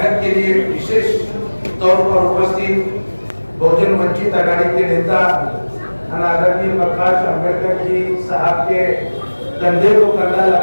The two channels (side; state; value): both; inverted; correlation -1.00